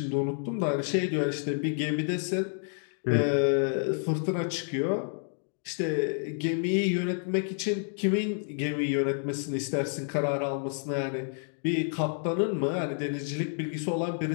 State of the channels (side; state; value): right; silent; 58 dB below the other